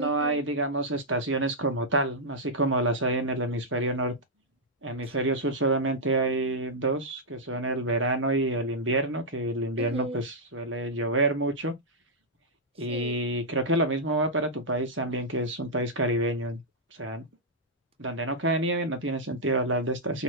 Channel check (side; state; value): both; normal; correlation -0.07